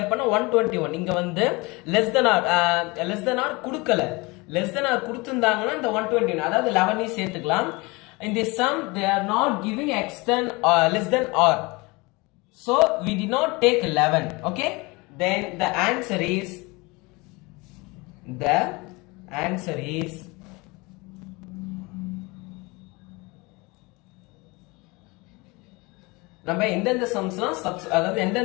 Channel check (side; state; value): right; quieter; 25.3 dB